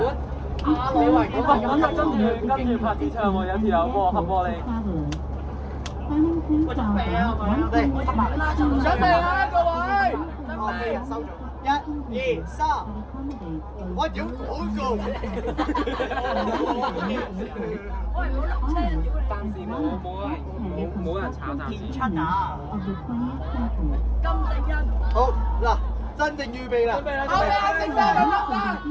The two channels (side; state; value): both; identical; correlation 1.00